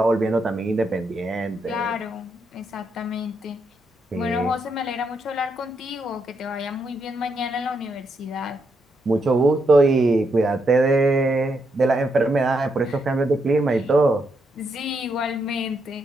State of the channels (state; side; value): normal; both; correlation 0.79